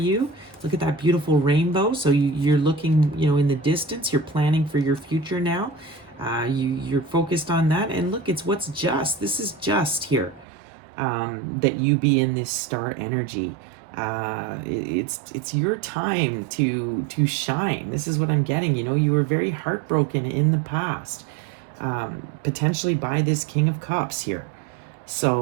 Look at that beautiful rainbow. So you're looking, you know, in the distance. You're planning for your future now. You're focused on that. And look, it's what's just. This is just here, that you be in this star energy. It's your time to shine. This is what I'm getting. You know, you were very heartbroken in the past, potentially by this King of Cups here.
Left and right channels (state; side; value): drops out; left; at 10.5 s